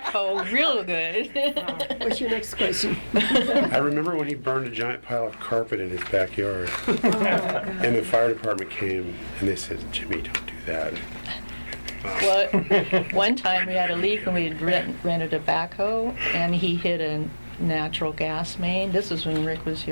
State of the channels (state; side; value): inverted; both; correlation -1.00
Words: real good. What's your next question? I remember when he burned a giant pile of carpet in his backyard, and the fire department came and they said, "Jimmy, don't do that." Well, one time we had a leak and we had rented a backhoe and he hit a natural gas main. This was when Rick was